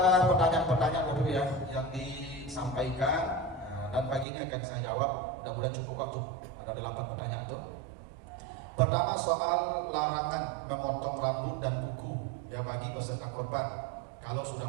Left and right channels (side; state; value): left; drops out; at 4.2 s